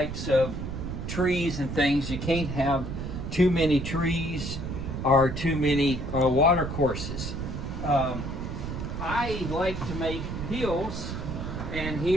of trees and things. You can't have too many trees or too many water courses. I like to make hills, and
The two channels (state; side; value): noise; right; rumble, 5 dB below the sound